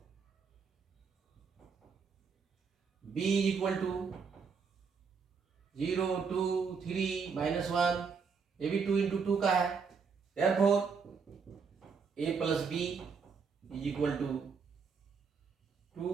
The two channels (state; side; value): quieter; left; 5.6 dB